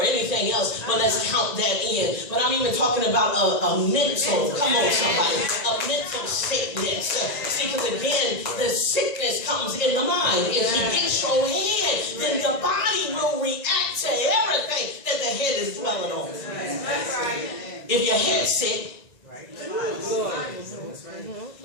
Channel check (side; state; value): right; late; 1.9 ms